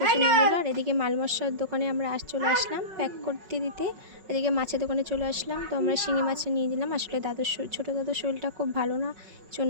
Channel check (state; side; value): late; left; 5.4 ms